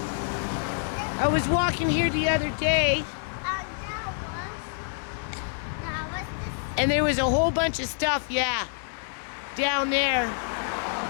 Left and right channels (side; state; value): right; silent; 60 dB below the other